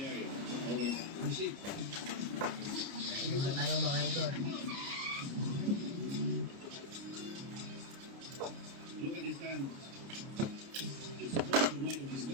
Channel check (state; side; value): late; left; 29 ms